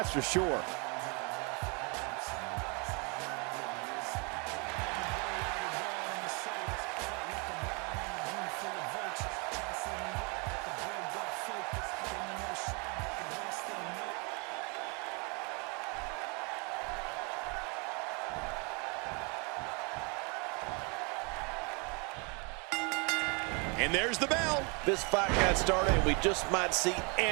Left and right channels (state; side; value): quieter; left; 32.5 dB